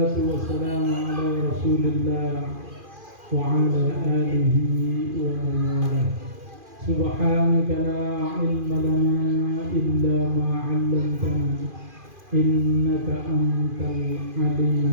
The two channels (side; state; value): left; late; 2.4 ms